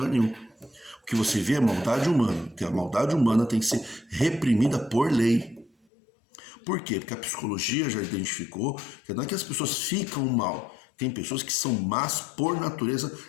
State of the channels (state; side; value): drops out; right; at 5.7 s